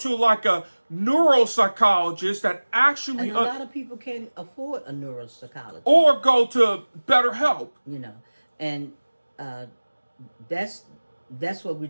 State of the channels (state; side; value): inverted; both; correlation -1.00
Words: like a neuropsychologist that actually... And a lot of people can't afford a neuropsychologist. Or go to BetterHelp. You know, and that's what we're